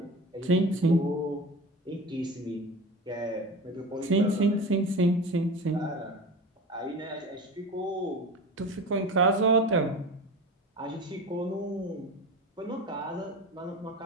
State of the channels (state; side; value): normal; both; correlation 0.32